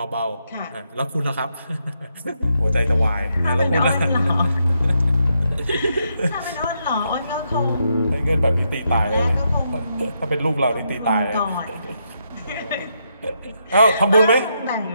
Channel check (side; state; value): both; inverted; correlation -0.80